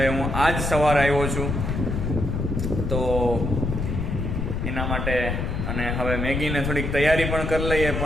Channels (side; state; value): left; noise; rumble, 2 dB below the sound